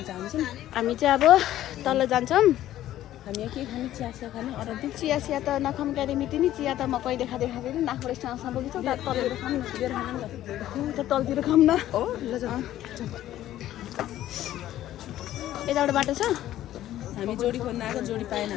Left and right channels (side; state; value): right; quieter; 13.2 dB